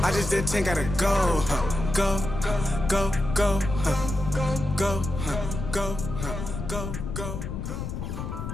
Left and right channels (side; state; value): left; noise; rumble, 5 dB below the sound